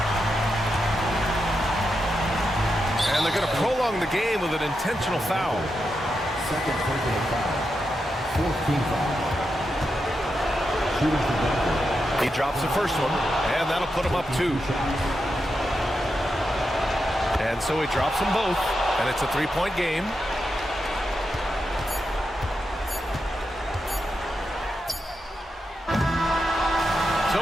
And they're going to prolong the game with an intentional foul. Second personal foul. 14th foul. Shooting for Denver. He drops the first one, and that'll put him up 2. And so he drops them both, and it's a 3-point game. So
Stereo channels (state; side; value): normal; both; correlation 0.86